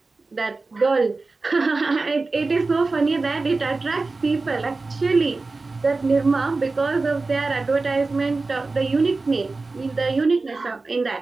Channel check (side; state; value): left; quieter; 3.7 dB